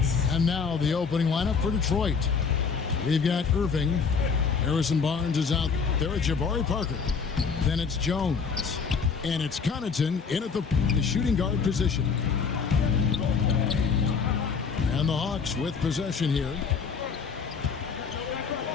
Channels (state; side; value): quieter; right; 5.6 dB